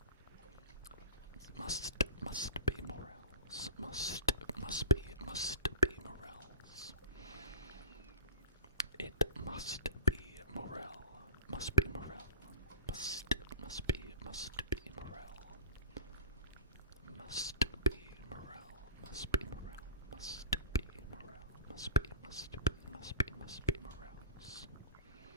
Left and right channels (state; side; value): inverted; both; correlation -0.34